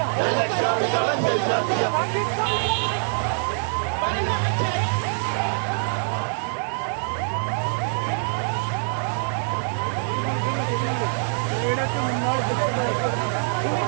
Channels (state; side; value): silent; left; 62 dB below the other